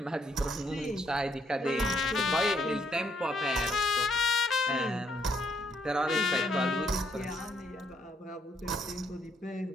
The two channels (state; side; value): normal; both; correlation 0.71